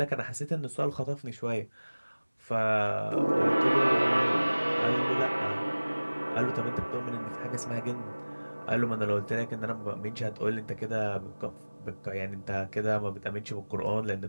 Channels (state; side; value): inverted; both; correlation -1.00